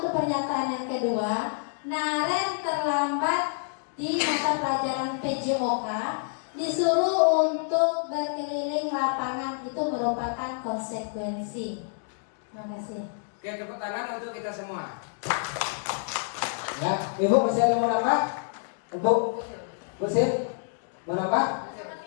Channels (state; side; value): silent; right; digital silence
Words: pernyataan yang kedua, Naren terlambat di mata pelajaran PJOK, disuruh untuk berkeliling lapangan. Itu merupakan konsekuensi. Terima kasih. Oke, tepuk tangan untuk kita semua. Ya, Ibu masih ada mau nambah? Ibu, Sil, mau nambah?